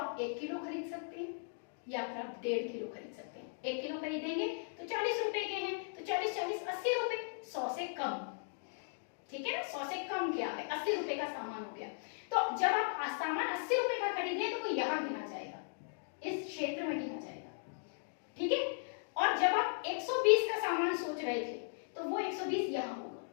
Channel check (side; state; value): right; silent; digital silence